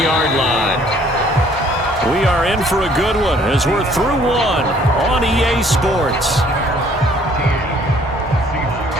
line. We are in for a good one as we're through one on EA Sports.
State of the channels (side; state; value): both; normal; correlation 0.59